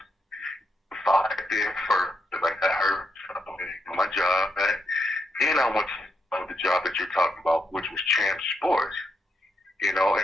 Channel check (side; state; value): both; normal; correlation 0.81